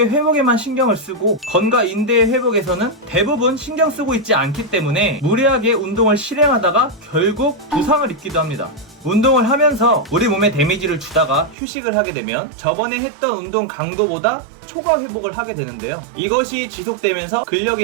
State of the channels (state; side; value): drops out; left; at 11.6 s